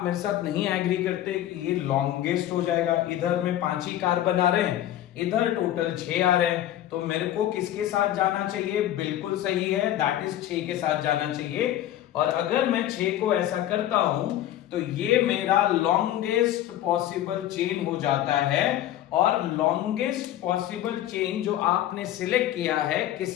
मेरे साथ नहीं एग्री करते कि ये लॉन्गेस्ट हो जाएगा? इधर में 5 ही कार्बन आ रहे हैं, इधर टोटल 6 आ रहे हैं, तो मेरे को किसके साथ जाना चाहिए? बिल्कुल सही है, दैट इज 6 के साथ जाना चाहिए। और अगर मैं 6 को ऐसा करता हूं तो ये मेरा लॉन्गेस्ट पॉसिबल चेन हो जाता है। और लॉन्गेस्ट पॉसिबल चेन जो आपने सिलेक्ट किया है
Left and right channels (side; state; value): right; quieter; 12.7 dB